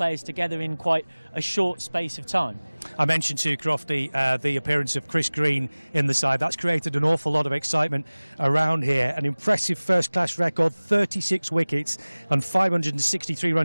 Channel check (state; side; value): inverted; both; correlation -1.00